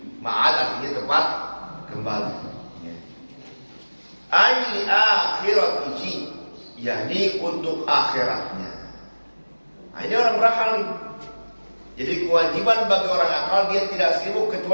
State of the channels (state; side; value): inverted; both; correlation -1.00